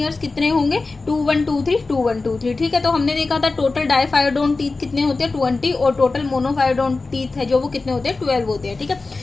कितने होंगे, 2123। ठीक है, तो हमने देखा था टोटल डायफायोडोंट टीथ कितने होते हैं, 20, और टोटल मोनोफायोडोंट टीथ है जो वो कितने होते हैं, 12 होते हैं। ठीक है,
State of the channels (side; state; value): right; quieter; 3.7 dB